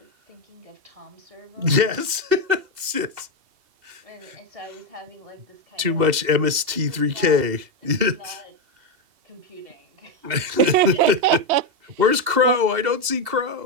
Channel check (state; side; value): late; left; 2.7 ms